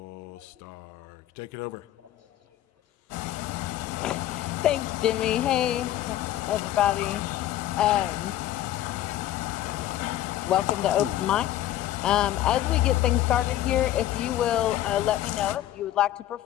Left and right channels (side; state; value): right; quieter; 13.2 dB